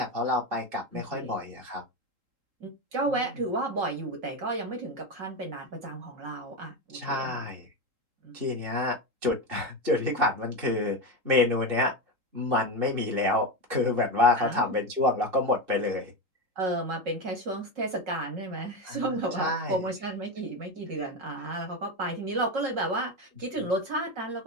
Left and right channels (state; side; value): late; left; 3.8 ms